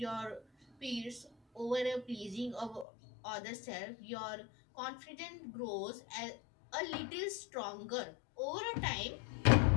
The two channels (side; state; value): right; drops out; at 2.9 s